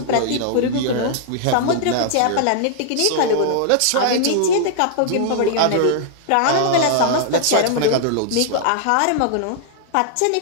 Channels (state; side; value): different; both; correlation -0.01